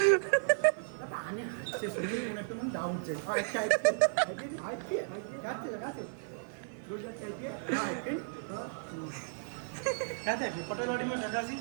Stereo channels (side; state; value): left; silent; digital silence